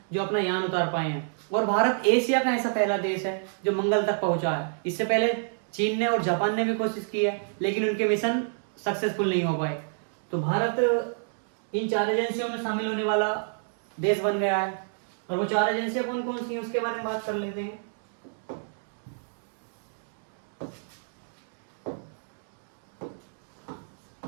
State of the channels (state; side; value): silent; left; digital silence